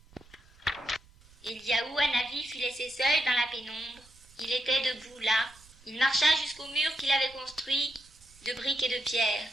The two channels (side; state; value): right; noise; rumble, 26 dB below the sound